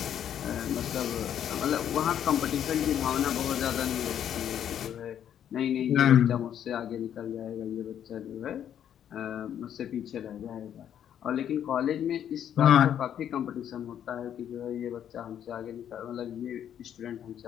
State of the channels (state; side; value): quieter; right; 9.7 dB